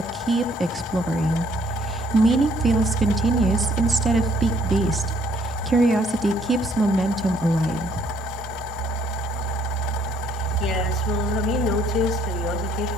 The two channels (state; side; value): normal; both; correlation 0.65